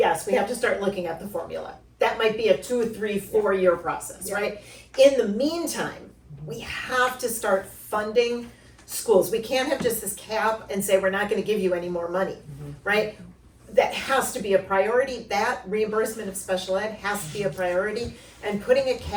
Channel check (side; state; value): both; identical; correlation 1.00